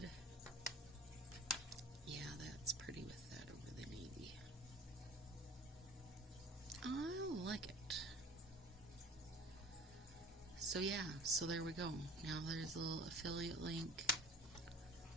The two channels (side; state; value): both; normal; correlation 0.45